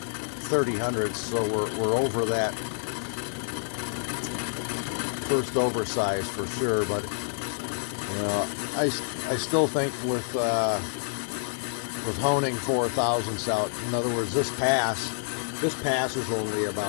hundredths, so we're over that first oversized for sure. But you know, I still think with honing 4 thousandths out. In other words, this pass is only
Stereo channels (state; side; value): silent; right; digital silence